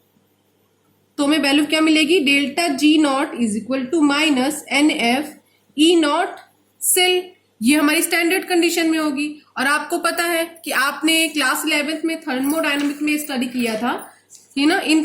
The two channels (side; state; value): both; identical; correlation 1.00